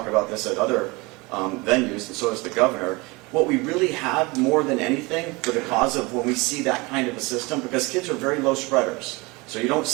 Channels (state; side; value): quieter; left; 25.0 dB